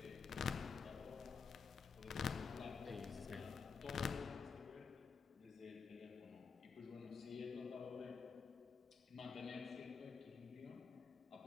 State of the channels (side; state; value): right; quieter; 5.5 dB